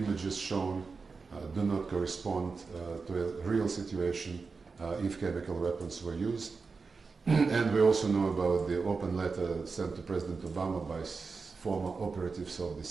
shown do not correspond to a real situation if chemical weapons were used. And we also know about the open letter sent to President Obama by former operatives of the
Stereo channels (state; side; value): quieter; left; 4.6 dB